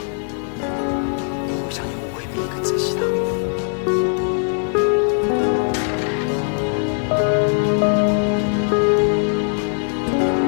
因为我相信我会比你更珍惜他。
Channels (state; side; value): silent; right; 64 dB below the other